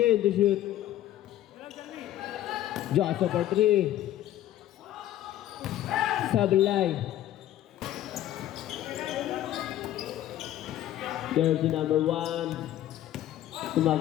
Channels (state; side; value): quieter; right; 13.0 dB